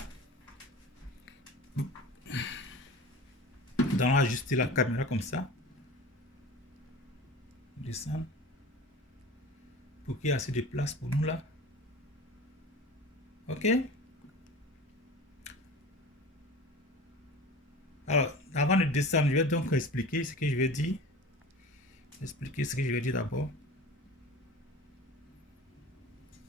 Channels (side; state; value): both; normal; correlation 0.36